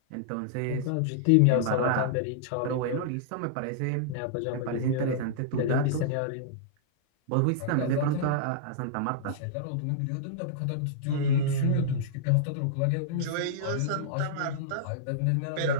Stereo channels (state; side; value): different; both; correlation -0.02